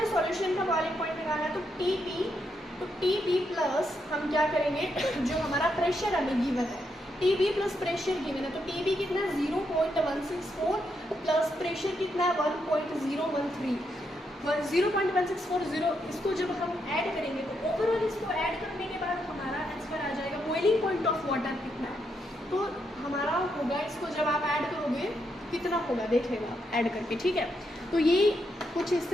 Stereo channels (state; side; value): normal; both; correlation 0.80